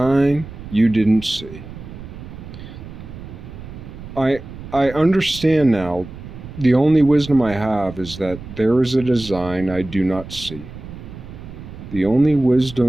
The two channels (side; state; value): right; noise; rumble, 13 dB below the sound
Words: you didn't see. I understand now. The only wisdom I have is that there is a design I do not see. The only